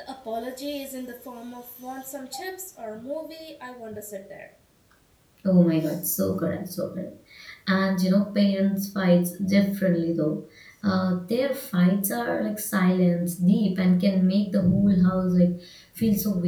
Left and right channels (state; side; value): identical; both; correlation 1.00